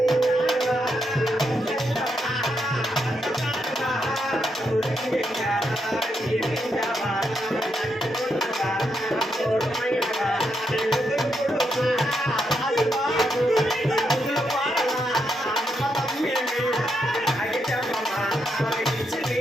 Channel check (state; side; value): normal; both; correlation 0.81